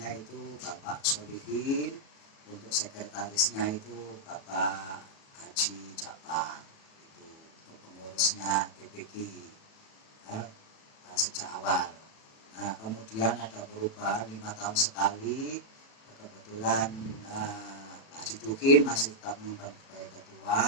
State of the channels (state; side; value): late; right; 36 ms